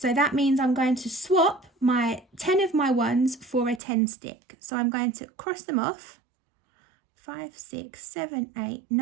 that means I'm going to swap my 10 of my ones for a 10 stick. So I'm going to cross them off. 5, 6, 7, 8,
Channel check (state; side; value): drops out; left; at 3.8 s